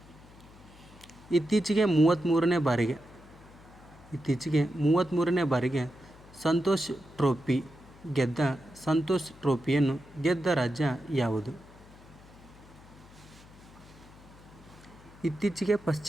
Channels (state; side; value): noise; left; hum, 22 dB below the sound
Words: ಇತ್ತೀಚೆಗೆ 33ನೇ ಬಾರಿಗೆ ಸಂತೋಷ್ ಟ್ರೋಫಿಯನ್ನು ಗೆದ್ದ ರಾಜ್ಯ ಯಾವುದು? ಇತ್ತೀಚೆಗೆ